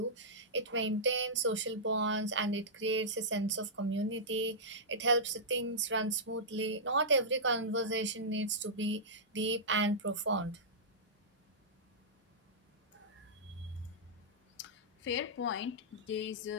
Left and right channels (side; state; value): both; normal; correlation -0.14